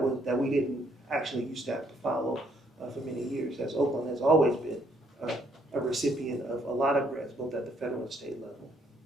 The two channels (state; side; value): normal; both; correlation 0.69